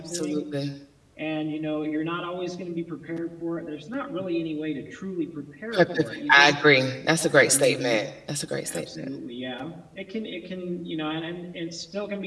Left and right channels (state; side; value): identical; both; correlation 1.00